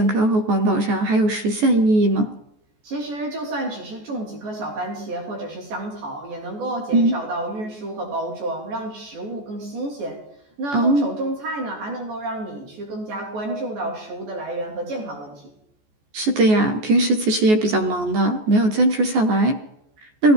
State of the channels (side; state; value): left; late; 14 ms